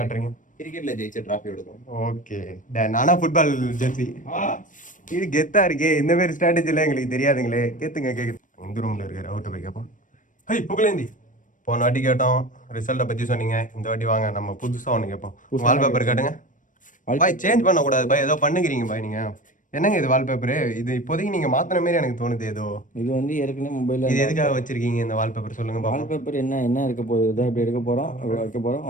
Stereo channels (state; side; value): late; right; 0.38 ms